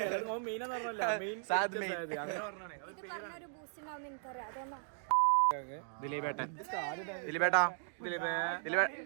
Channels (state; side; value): silent; left; digital silence